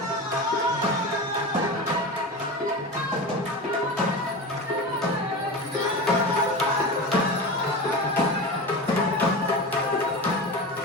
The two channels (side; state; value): both; normal; correlation 0.27